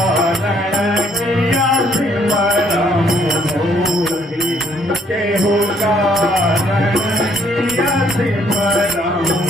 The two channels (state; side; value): normal; both; correlation 0.66